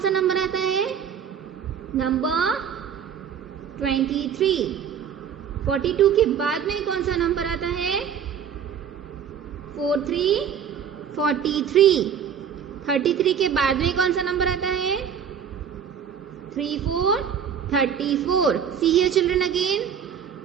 नंबर आता है? नंबर 23. 42 के बाद में कौन सा नंबर आता है? 43, 43. 33 के बाद में कौन सा नंबर आता है? 34, 34. सी हियर चिल्ड्रन अगेन,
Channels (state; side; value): quieter; left; 7.9 dB